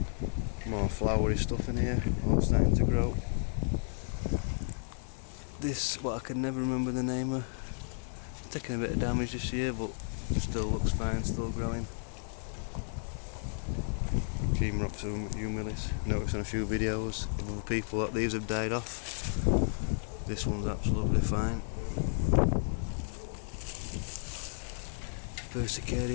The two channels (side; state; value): right; silent; 56 dB below the other